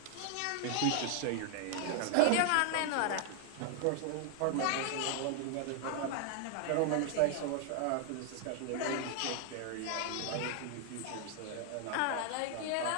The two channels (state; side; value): different; both; correlation 0.00